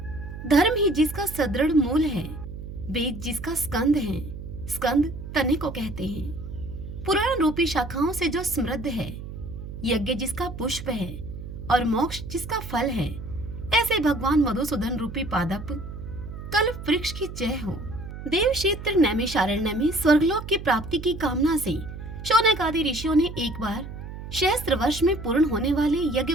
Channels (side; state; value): right; noise; hum, 10 dB below the sound